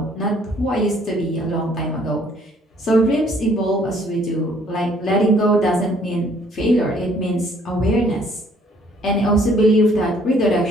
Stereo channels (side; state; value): both; normal; correlation 0.62